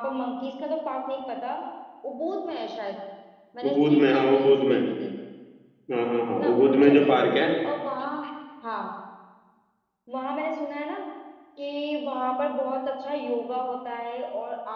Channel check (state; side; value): identical; both; correlation 1.00